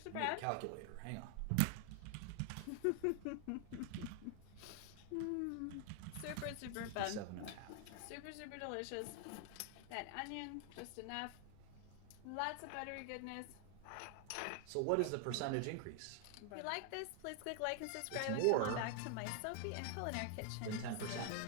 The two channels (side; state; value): both; different; correlation 0.00